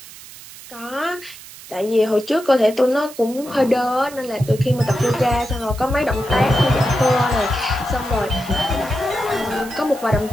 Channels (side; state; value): right; noise; hiss, 17 dB below the sound